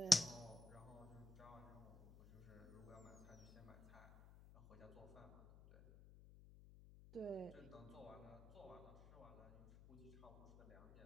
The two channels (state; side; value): noise; left; hum, 18 dB below the sound